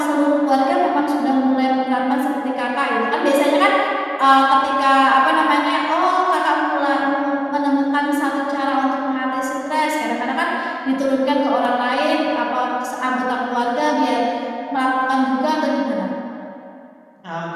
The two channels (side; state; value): both; identical; correlation 1.00